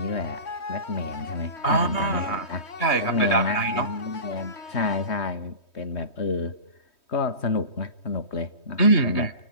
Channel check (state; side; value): late; right; 3.2 ms